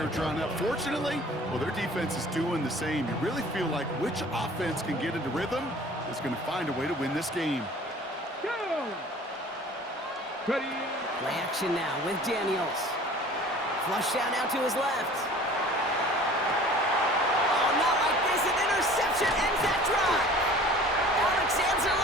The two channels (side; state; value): both; normal; correlation 0.47